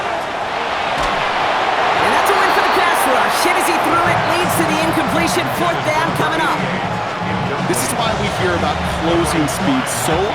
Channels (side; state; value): both; identical; correlation 1.00